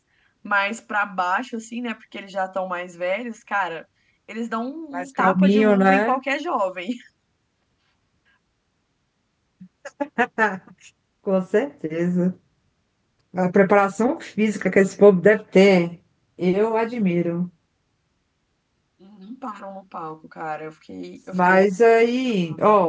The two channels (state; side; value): identical; both; correlation 1.00